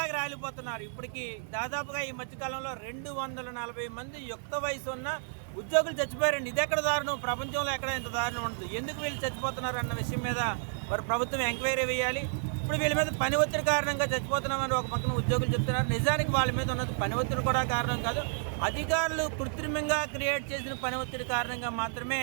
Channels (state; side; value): silent; left; digital silence